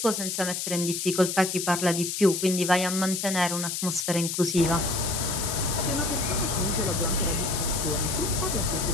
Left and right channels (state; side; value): noise; left; hiss, 3 dB below the sound